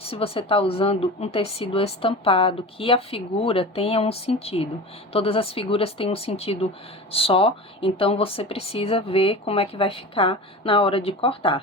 se você está usando um tecido estampado, que a figura tenha um sentido. Todas as figuras têm um sentido só, então você precisa ver como é que vai ficar na hora de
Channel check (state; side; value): normal; both; correlation 0.31